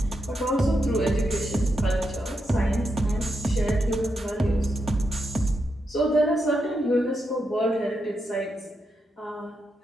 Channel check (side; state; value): both; normal; correlation 0.84